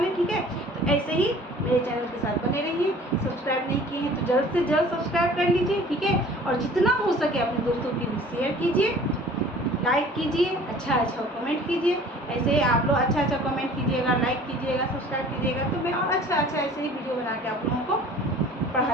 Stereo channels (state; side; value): normal; both; correlation 0.48